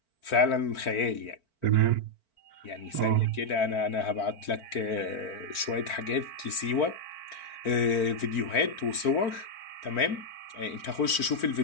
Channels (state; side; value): late; right; 4.5 ms